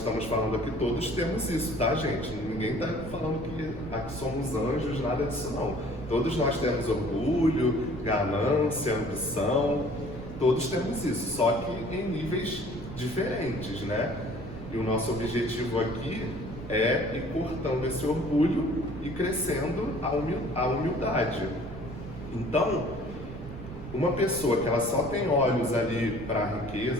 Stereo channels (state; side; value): noise; right; rumble, 12 dB below the sound